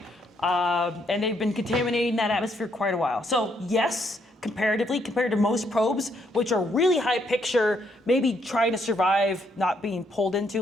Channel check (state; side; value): normal; both; correlation 0.73